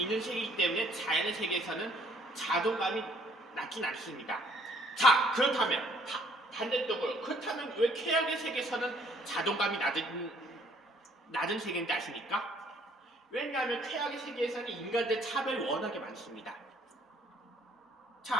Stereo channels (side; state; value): both; normal; correlation 0.62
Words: 세계이기 때문에 자연의 세계에서는 자존감이 낮진 않습니다. 자, 그렇다면 반대쪽으로 그렇다면 왜 쾌락의 세계에서는 자존감이 낮은 세계인지 아십니까? 왜냐하면 쾌락의 세계에서는 인간들 차별이 워낙에 많습니다.